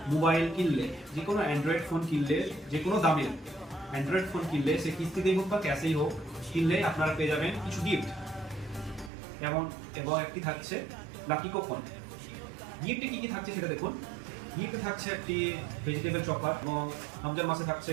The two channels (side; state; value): left; drops out; at 9.1 s